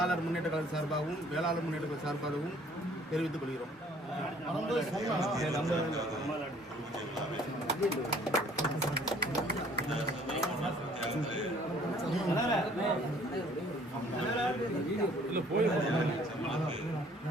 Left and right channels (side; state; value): both; normal; correlation 0.57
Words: முன்னேற்ற கழக சார்பாகவும் வேளாளர் முன்னேற்ற கழக சார்பாகவும் தெரிவித்துக் கொள்கிறோம்.